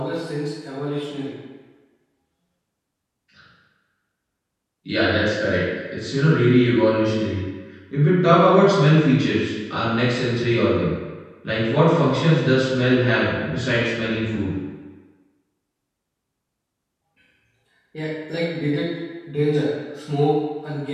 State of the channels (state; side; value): identical; both; correlation 1.00